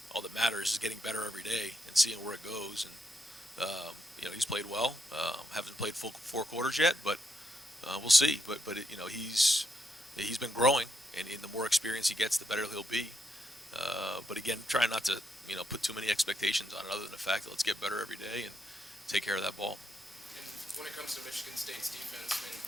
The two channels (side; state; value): both; normal; correlation 0.80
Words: all that matters is getting better every day and seeing where it goes. And he's played well. Haven't played full 4 quarters yet, but we'll see. But he's been growing, and the more experience he gets, the better he'll be. But again, try not to put too many expectations on it, other than the fact that let's get better every day and take care of that ball. And when it comes to Michigan State's defense, I mean,